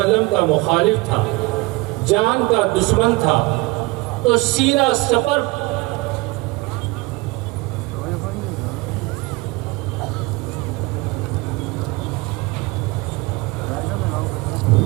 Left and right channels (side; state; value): left; quieter; 23.2 dB